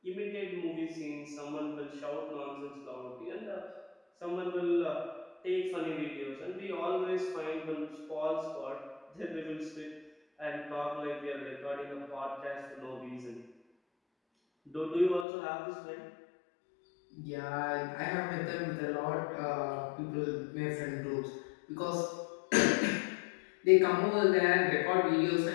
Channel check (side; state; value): right; drops out; at 15.2 s